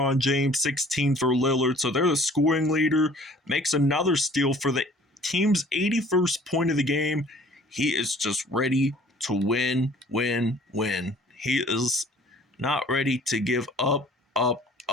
James, 16 for Lillard. So they're the scoring leader. Makes another steal for the team's 81st point of the game. He is just ready to win. He is not ready to give up.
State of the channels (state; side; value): normal; both; correlation 0.52